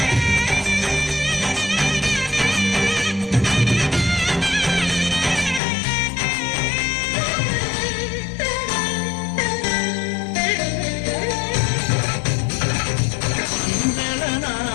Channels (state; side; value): drops out; right; at 5.6 s